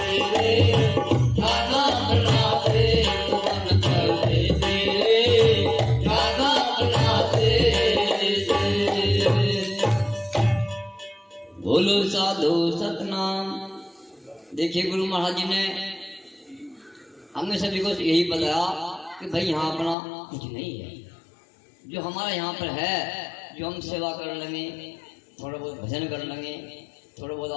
रे, जाना अपना देश मन परदेसी रे, जाना अपना देश। बोलो साधु सतनाम। देखिए गुरु महाराज जी ने हमने सभी को यही बताया कि भाई यहाँ अपना कुछ नहीं है, जो हमारा यहाँ पर है, जो हम सेवा कर लेंगे, थोड़ा बहुत भजन कर लेंगे, थोड़ा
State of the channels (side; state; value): right; drops out; at 20.0 s